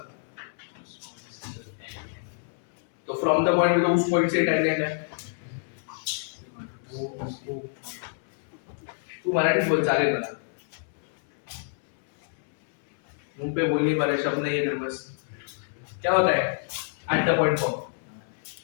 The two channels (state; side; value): silent; right; 60 dB below the other